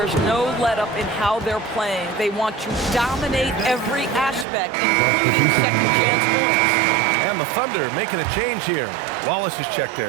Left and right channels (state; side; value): drops out; left; at 4.5 s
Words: no let-up in how they're playing. They want to dominate every aspect, including second-chance points. And the Thunder making a change here. Wallace is checked